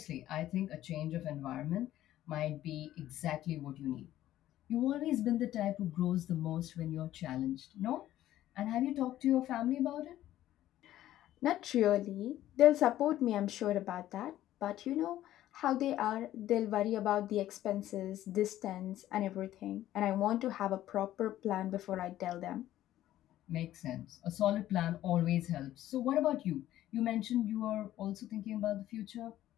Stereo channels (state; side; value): quieter; right; 13.5 dB